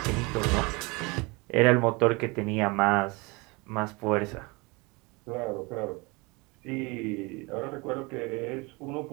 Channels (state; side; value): quieter; left; 26.6 dB